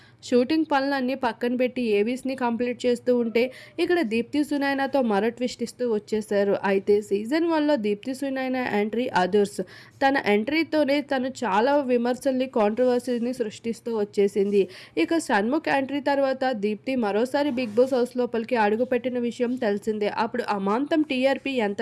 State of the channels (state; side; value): identical; both; correlation 1.00